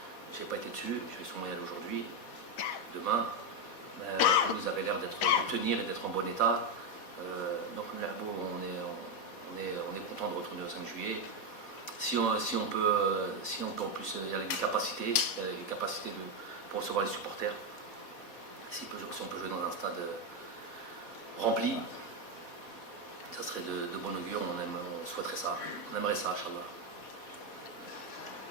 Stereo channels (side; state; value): right; late; 4.1 ms